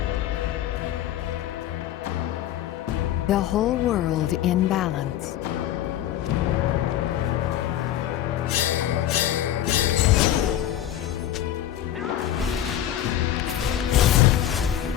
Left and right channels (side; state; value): right; quieter; 11.8 dB